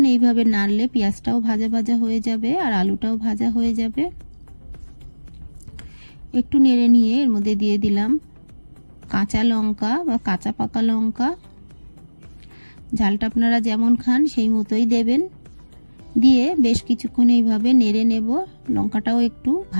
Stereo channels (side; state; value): both; inverted; correlation -1.00